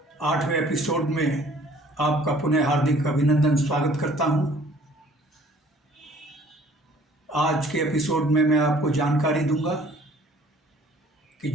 8वें एपिसोड में आपका पुनः हार्दिक अभिनंदन स्वागत करता हूं। आज के एपिसोड में मैं आपको जानकारी दूंगा कि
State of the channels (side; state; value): both; normal; correlation 0.55